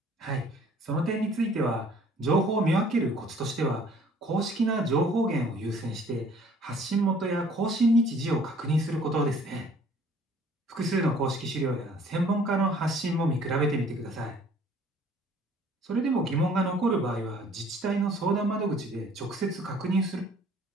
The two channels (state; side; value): normal; both; correlation 0.55